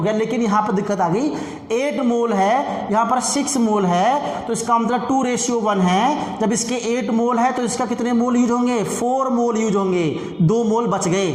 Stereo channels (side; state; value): both; identical; correlation 1.00